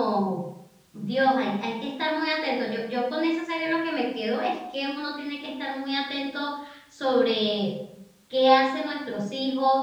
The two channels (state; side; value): identical; both; correlation 1.00